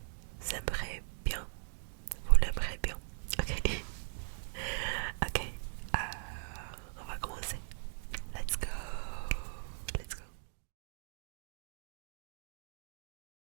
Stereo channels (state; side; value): silent; left; digital silence